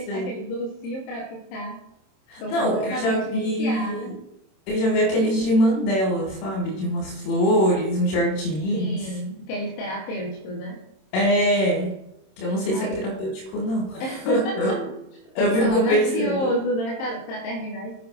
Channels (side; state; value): right; late; 27 ms